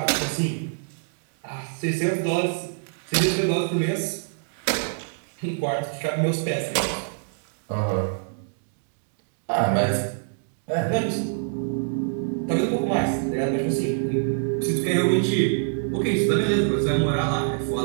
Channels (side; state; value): left; silent; digital silence